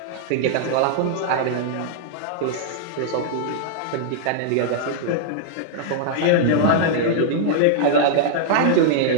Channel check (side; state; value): both; different; correlation -0.01